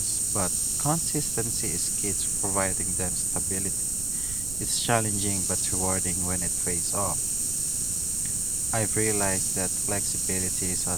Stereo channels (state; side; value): noise; right; rumble, 9 dB below the sound